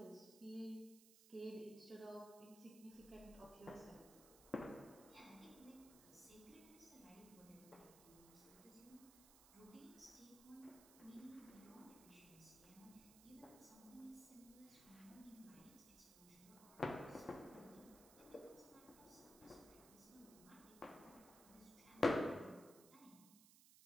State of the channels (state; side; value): noise; right; hiss, 16 dB below the sound